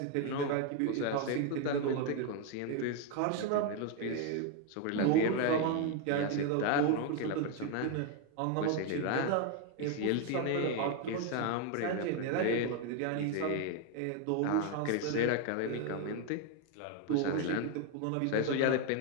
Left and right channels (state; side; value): different; both; correlation 0.01